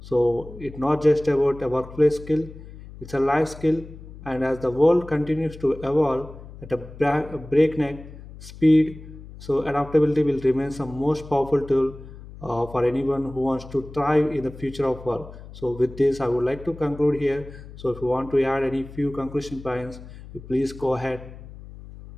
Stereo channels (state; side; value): noise; left; hum, 16 dB below the sound